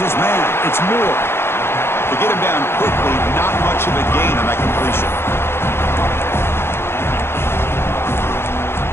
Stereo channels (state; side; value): late; right; 0.12 ms